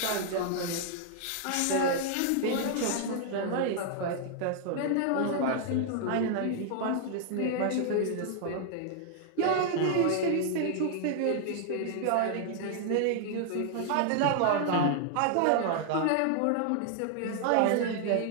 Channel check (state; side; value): different; both; correlation 0.00